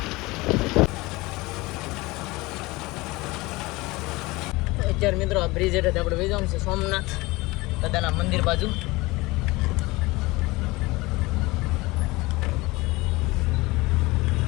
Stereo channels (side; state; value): right; quieter; 22.0 dB